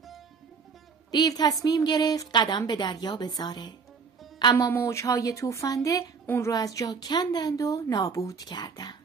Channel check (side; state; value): left; quieter; 5.4 dB